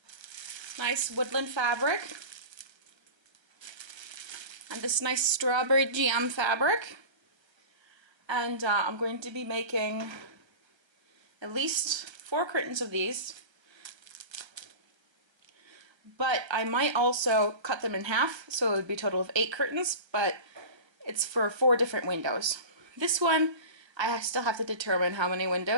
nice woodland fabric and this nice strawberry jam fabric, and I'm going to be making at least 4 curtains of these, but I might also cut them in half, so it would be a total of 8 curtains, but it's for 4 different windows. This one, I still have to determine how many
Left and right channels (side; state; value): left; late; 1.3 ms